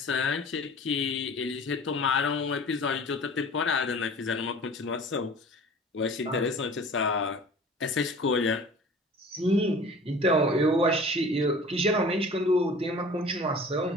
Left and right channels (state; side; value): normal; both; correlation 0.44